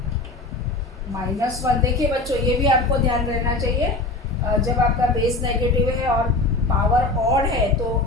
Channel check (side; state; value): right; quieter; 3.1 dB